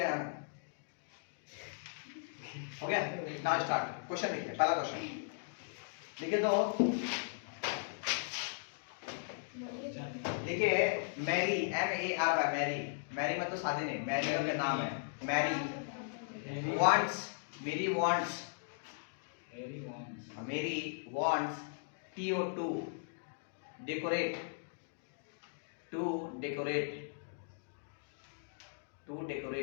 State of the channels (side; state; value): right; silent; digital silence